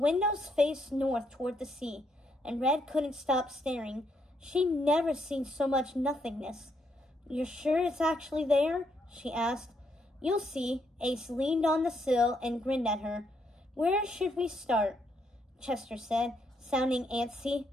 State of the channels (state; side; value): normal; both; correlation 0.75